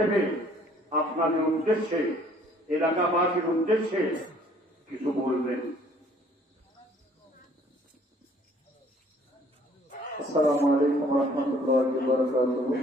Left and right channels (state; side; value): normal; both; correlation 0.58